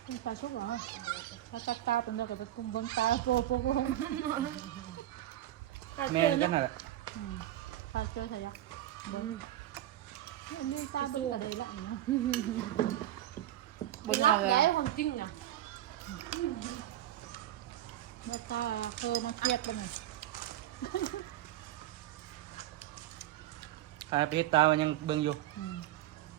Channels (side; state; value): left; quieter; 13.4 dB